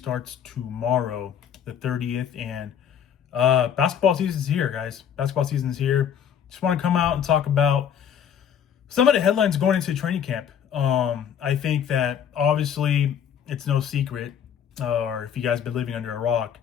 tomorrow, the 30th, and basketball season is here, guys. Basketball season is here. Just want to come out and talk about some of the headlines going into training camp. I think that obviously it's no secret, or if you guys been living under a rock,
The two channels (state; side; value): quieter; right; 8.6 dB